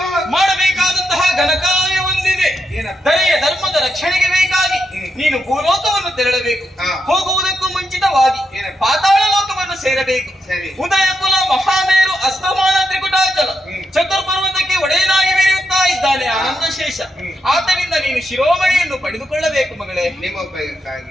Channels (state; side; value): normal; both; correlation 0.83